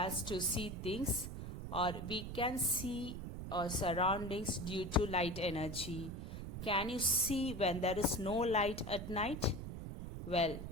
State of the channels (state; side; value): noise; right; rumble, 7 dB below the sound